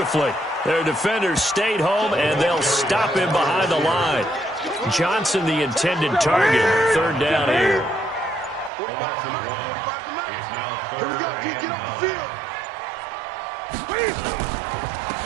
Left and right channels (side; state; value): left; drops out; at 8.7 s